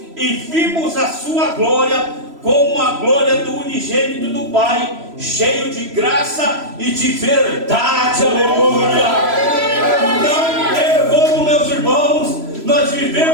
e vimos a sua glória como a glória do unigênito do Pai, cheio de graça e de verdade. Aleluia. Não tem como, meus irmãos, nós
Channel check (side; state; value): left; late; 3.0 ms